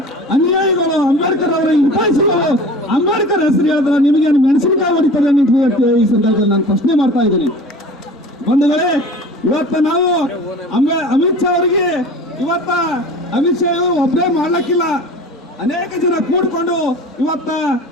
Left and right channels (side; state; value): both; normal; correlation 0.39